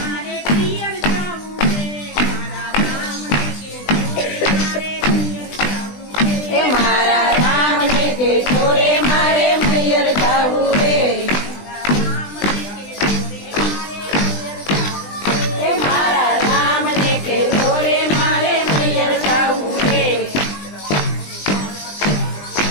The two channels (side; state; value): right; late; 20 ms